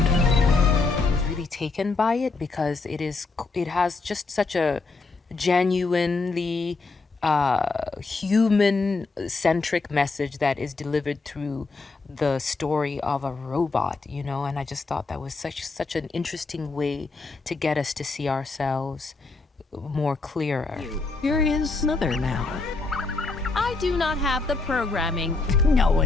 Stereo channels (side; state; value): right; quieter; 3.9 dB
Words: Taken by it because it has just such a genuinely human-centric message that is delivered through the story of a robot, you know, and I just thought that was such an interesting way to get us to see ourselves more clearer. Here is Mother now. I do not have the programming. No